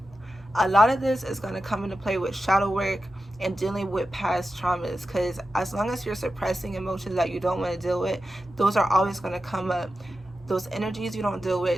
a lot of this is going to come into play with shadow work and dealing with past traumas, because as long as you're suppressing emotions that you don't want to deal with, those are always going to come up. Those energies you don't deal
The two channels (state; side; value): normal; both; correlation 0.91